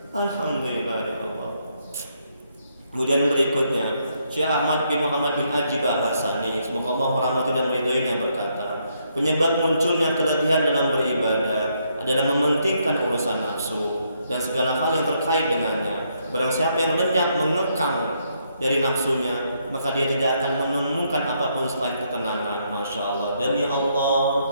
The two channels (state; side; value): inverted; both; correlation -0.75